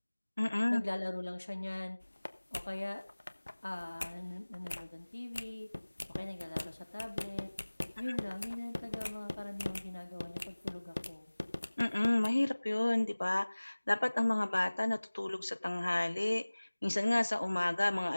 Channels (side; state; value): both; inverted; correlation -1.00